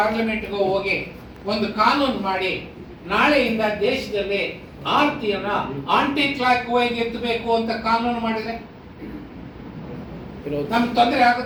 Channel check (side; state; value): both; identical; correlation 1.00